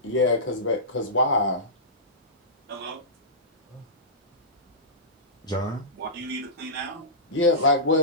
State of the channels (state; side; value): normal; both; correlation -0.19